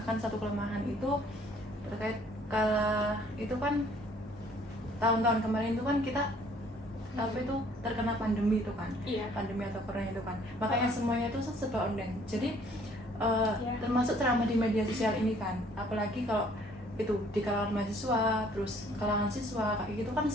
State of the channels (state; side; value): normal; both; correlation 0.59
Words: satu kelemahan itu terkait itu kan tahun-tahun kemarin itu kan kita apa itu terkena pandemi itu kan, Iya. pandemi atau corona itu kan, makanya semuanya itu serba online. Jadi Ya. termasuk ceramah di media sosial ini kan, apalagi kalau itu di kalangan mahasiswa, terus kalangan siswa kayak gitu kan,